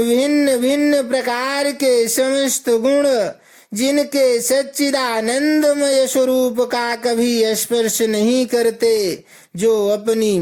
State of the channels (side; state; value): both; identical; correlation 1.00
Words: भिन्न प्रकार के समस्त गुण जिनके सच्चिदानंदमय स्वरूप का कभी स्पर्श नहीं करते, जो अपनी